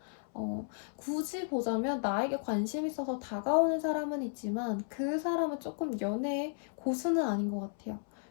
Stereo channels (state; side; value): silent; right; 55 dB below the other